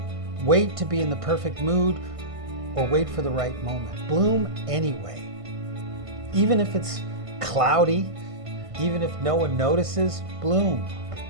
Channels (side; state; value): left; late; 1.5 ms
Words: wait to be in the perfect mood or wait for the right moment. Bloom anyway. Even if it's cloudy, even if no one notices, bloom.